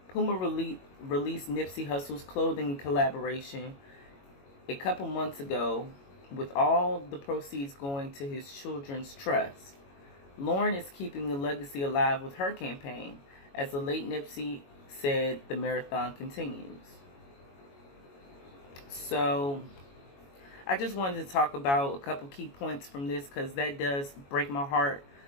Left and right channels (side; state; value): right; late; 22 ms